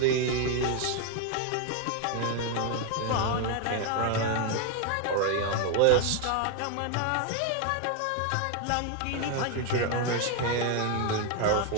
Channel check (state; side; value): different; both; correlation 0.01